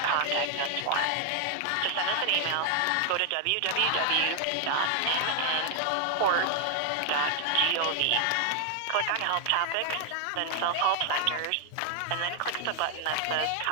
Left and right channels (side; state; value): both; different; correlation 0.00